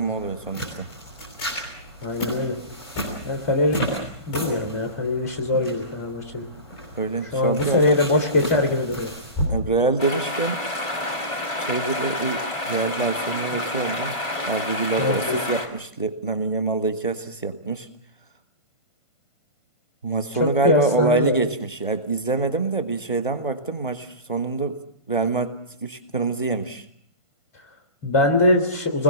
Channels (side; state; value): right; late; 1.5 ms